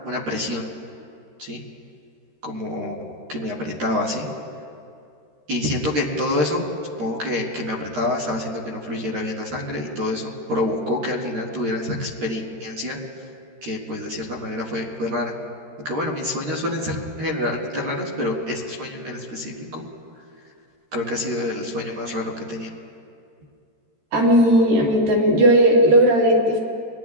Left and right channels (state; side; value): late; left; 13 ms